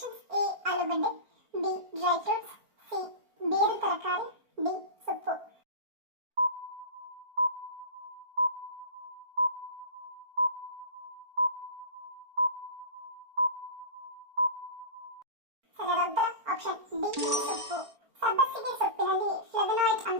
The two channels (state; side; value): late; left; 4.4 ms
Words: ಎ ಆಲೂಗಡ್ಡೆ, ಬಿ ಡ್ರೈ ಫ್ರೂಟ್ಸ್, ಸಿ ಬೇರು ತರಕಾರಿ, ಡಿ ಸೊಪ್ಪು. ಸರಿಯಾದ ಉತ್ತರ ಆಪ್ಷನ್ ಡಿ ಸೊಪ್ಪು. ಸಬ್ಬಸಿಗೆ ಸೊಪ್ಪಿನಲ್ಲಿ ಫ್ಲೇವನಾಯ್ಡ್